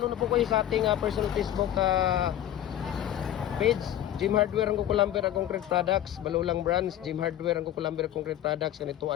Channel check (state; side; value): quieter; right; 11.8 dB